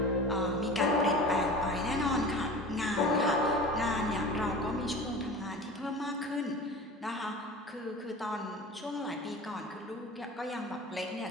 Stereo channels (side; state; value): both; normal; correlation 0.36